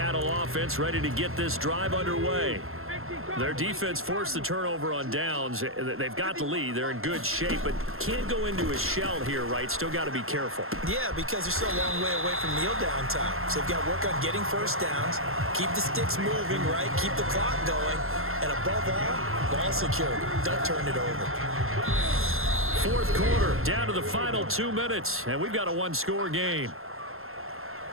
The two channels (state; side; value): late; left; 0.62 ms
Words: offense ready to get this drive underway. Their defense forced the turnover on downs. They've got the lead. They're in good shape, but can't go into a shell here, right? Still got to be careful. Yeah, because they're still a long way away from kneel down time. So they've got to work on getting first downs, keep the sticks moving, right? Keep the clock going, and above all, ball security. Don't turn it over. 4th quarter, down to the final 2 minutes, and we've got a one-score game.